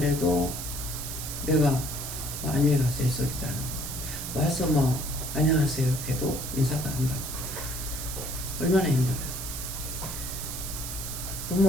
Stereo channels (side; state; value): right; noise; hiss, 6 dB below the sound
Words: 내가 안녕히 가세요 소리도 안 하고 와서 안녕하세요 해도 인사도 안 받고 얼마나 힘들어요.